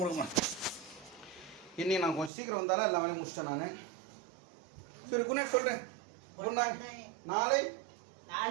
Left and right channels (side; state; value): left; drops out; at 2.3 s